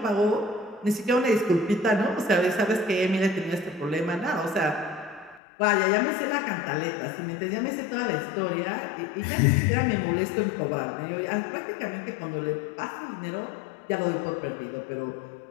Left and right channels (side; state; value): right; drops out; at 5.4 s